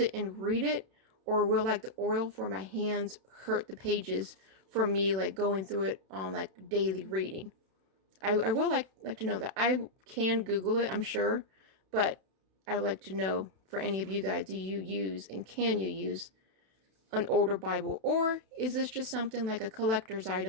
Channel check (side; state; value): left; late; 31 ms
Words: and read it? Or will like the oil for my hands hurt the pages from me like going through it on like daily reading? I will like to know that. I can Google it, I'm sure, but I would like to know for any of you guys, do you use and can you use an older Bible? Or is this just something like a collector's